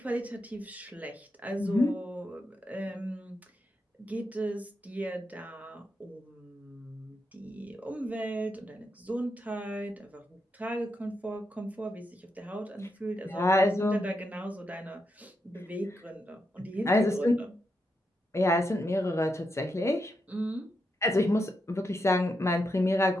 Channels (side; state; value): both; normal; correlation 0.84